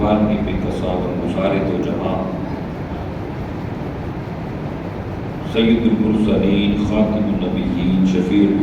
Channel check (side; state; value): both; identical; correlation 1.00